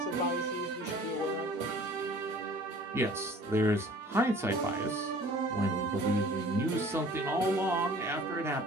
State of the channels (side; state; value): both; normal; correlation 0.49